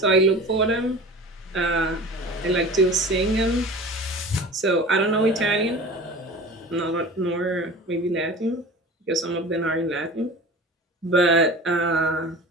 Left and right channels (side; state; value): both; normal; correlation 0.37